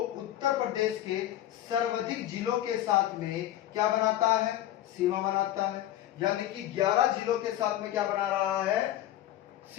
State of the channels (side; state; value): right; quieter; 13.0 dB